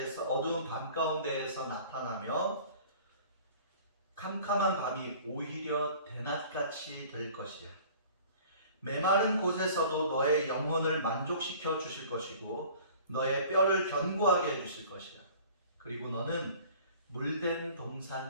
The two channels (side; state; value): both; inverted; correlation -0.47